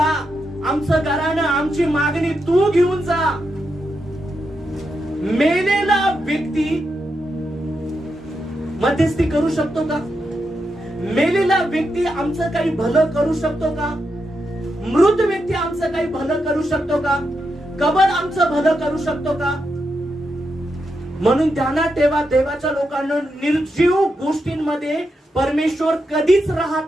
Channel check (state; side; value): normal; both; correlation 0.85